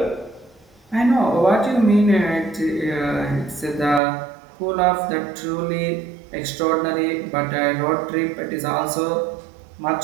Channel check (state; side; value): drops out; left; at 4.0 s